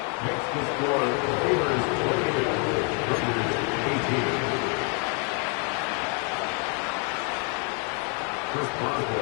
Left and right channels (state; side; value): quieter; right; 38.2 dB